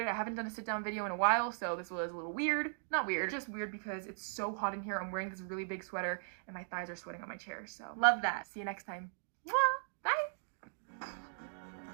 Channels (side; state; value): left; silent; digital silence